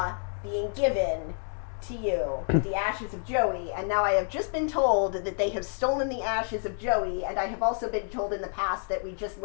being given to you, the ashes of Joey, and now I have just been told that they have stolen the ashes of Joey, and I have also been told in the past that we just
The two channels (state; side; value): silent; right; 59 dB below the other